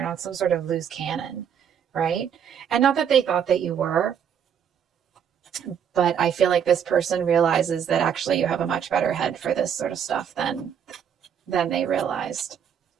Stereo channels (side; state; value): left; quieter; 8.2 dB